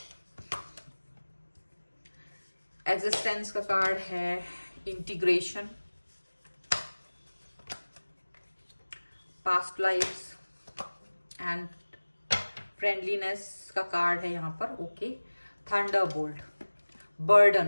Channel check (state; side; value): inverted; both; correlation -1.00